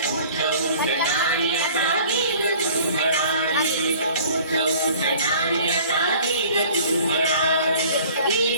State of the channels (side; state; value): both; inverted; correlation -0.49